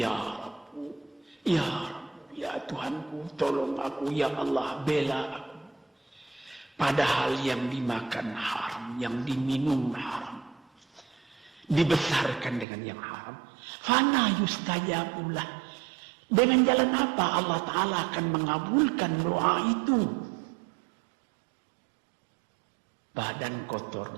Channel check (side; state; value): left; drops out; at 12.7 s